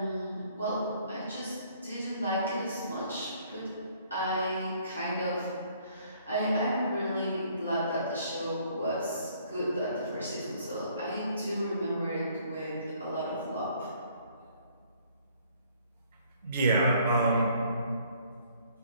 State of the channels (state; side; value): inverted; both; correlation -0.62